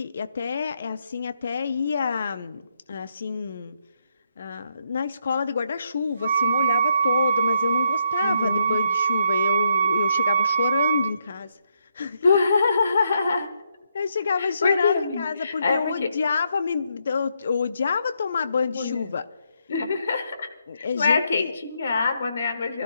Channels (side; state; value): both; inverted; correlation -0.77